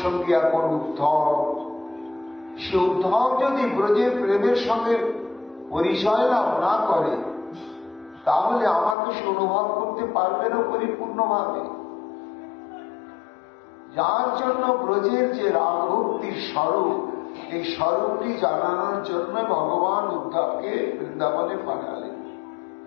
সঙ্গী এখন উদ্ধব। সে উদ্ধব যদি ব্রজের প্রেমের সঙ্গে পরিচয় লাভ না করে, তাহলে আমাকে সে অনুভব করতে পারবে না পরিপূর্ণভাবে। যার জন্য ব্রজের যে রাগ ভক্তির স্বরূপ, এই স্বরূপটি জানানোর জন্য ভগবান উদ্ধবকে বৃন্দাবনে পাঠালেন।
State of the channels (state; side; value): drops out; right; at 9.0 s